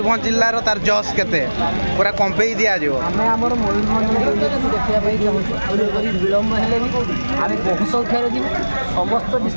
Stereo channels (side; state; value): both; inverted; correlation -1.00